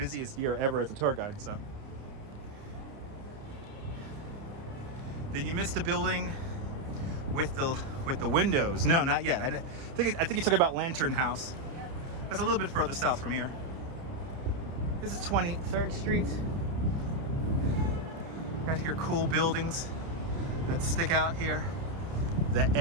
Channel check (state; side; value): late; left; 30 ms